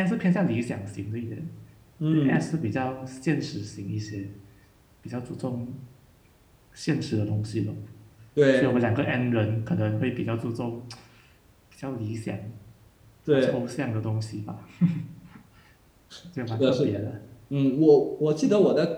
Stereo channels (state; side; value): identical; both; correlation 1.00